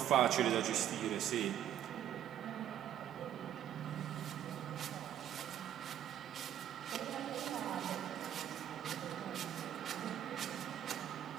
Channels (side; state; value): left; quieter; 10.8 dB